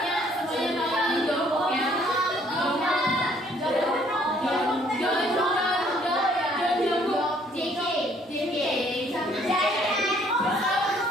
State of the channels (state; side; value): normal; both; correlation 0.62